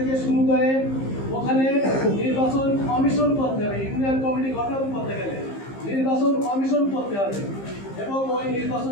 শুরু করে ওখানে নির্বাচন কমিশন করতে হবে। ইউনিয়ন কমিটি গঠন করতে গেলে নির্বাচন কমিশন করতে হবে এবং ওই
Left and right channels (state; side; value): late; right; 15 ms